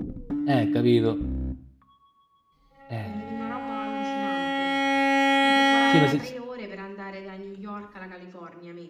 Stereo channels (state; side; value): identical; both; correlation 1.00